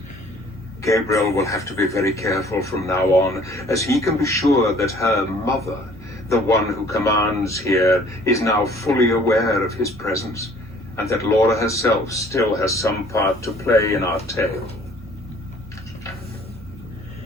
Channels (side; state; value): both; normal; correlation 0.55